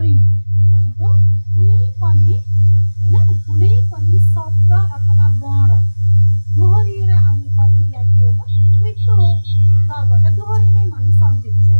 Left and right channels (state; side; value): inverted; both; correlation -1.00